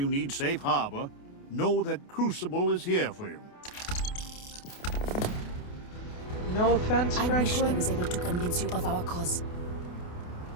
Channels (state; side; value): late; right; 28 ms